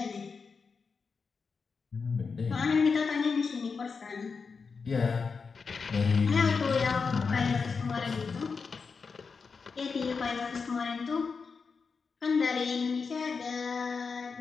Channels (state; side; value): quieter; right; 5.1 dB